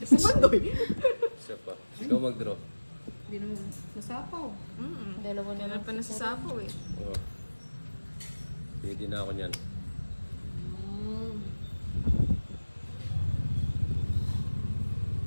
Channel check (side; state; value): both; inverted; correlation -1.00